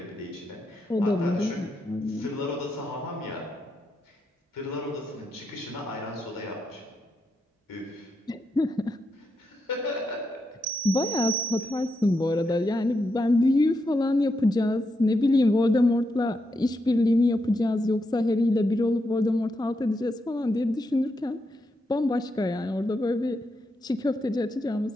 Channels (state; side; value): normal; both; correlation 0.83